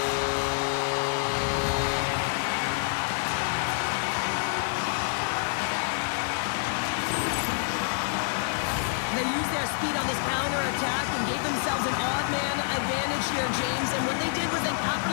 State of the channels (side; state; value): right; silent; digital silence